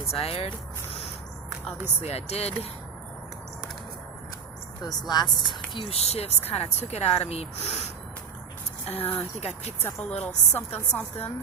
Obviously I did. Those last few shifts kind of took it out of me. I think I picked up a little something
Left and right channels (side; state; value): left; quieter; 6.6 dB